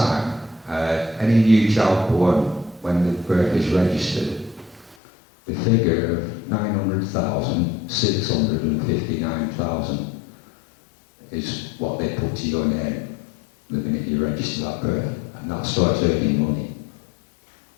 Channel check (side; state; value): right; drops out; at 5.0 s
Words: any new child born when the birth is registered, the figure of 900,000, 659,000 is what they put to your name the minute you register that birth, and that starts earning money.